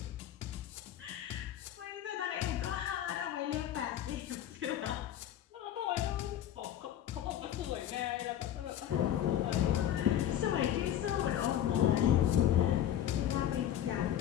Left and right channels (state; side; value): quieter; right; 11.0 dB